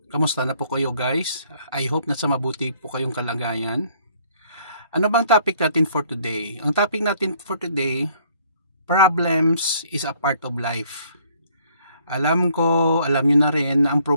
Kamusta na po kayo guys? I hope na sa mabuti po kayong kalagayan. Ano bang topic natin for today? Ang topic natin for today, problems is a part of life. Alam nyo na rin na ang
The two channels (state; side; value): inverted; both; correlation -0.62